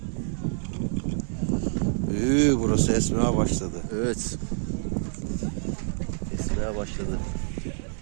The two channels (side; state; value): left; silent; digital silence